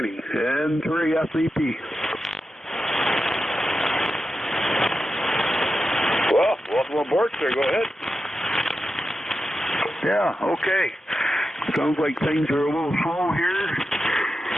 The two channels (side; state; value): both; normal; correlation 0.90